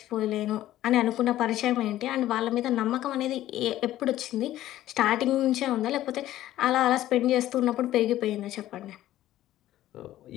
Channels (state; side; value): quieter; right; 13.9 dB